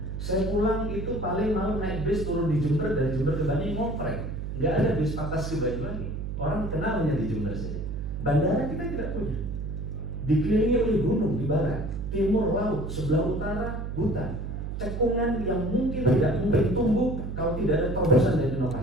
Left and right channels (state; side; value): noise; right; hum, 5 dB below the sound